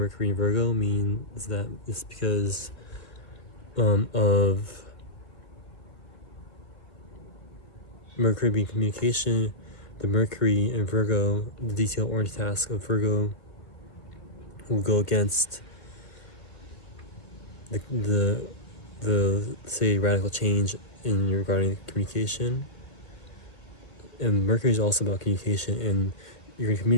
and Virgo means that it's because of Mercury being communication. The Mercury and Virgo, the detail-oriented task of Virgo, will go against the say radical change in regarding communication. And Mercury is also about communication, and you're going to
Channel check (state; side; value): late; right; 1.6 ms